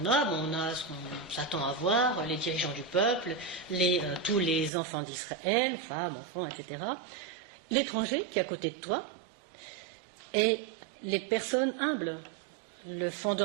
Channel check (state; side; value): drops out; left; at 4.7 s